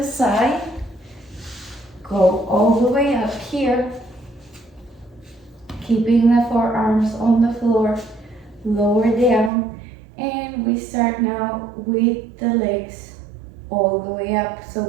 side. Go all the way up here. Keeping the forearms on the floor, lower down, and we start now with the legs all the way up. So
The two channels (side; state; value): left; drops out; at 9.5 s